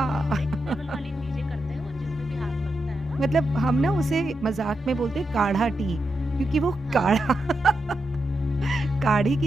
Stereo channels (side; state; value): both; normal; correlation 0.86